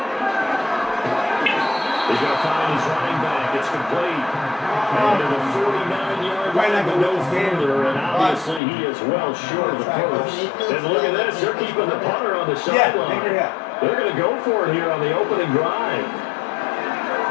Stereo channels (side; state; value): right; drops out; at 8.6 s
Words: He's going to find his running back. It's complete. And to the 49-yard line, but no further, and obviously he is well short of the first. And look at this, they're keeping the punter on the sideline. They're going to go for it here on the opening drive.